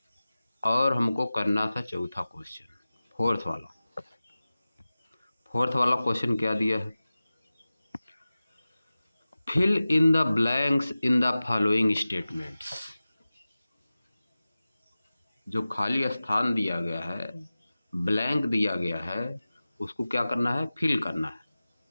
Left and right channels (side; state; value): both; inverted; correlation -0.96